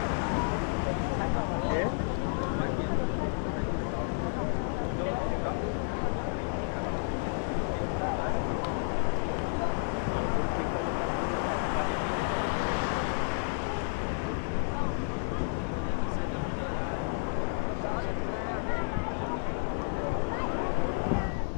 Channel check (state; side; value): silent; right; digital silence